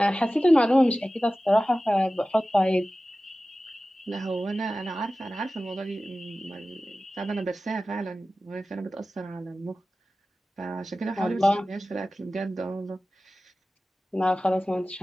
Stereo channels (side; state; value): both; normal; correlation 0.96